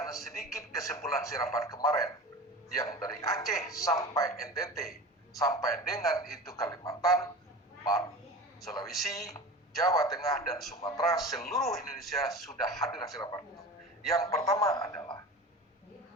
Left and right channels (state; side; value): normal; both; correlation 0.33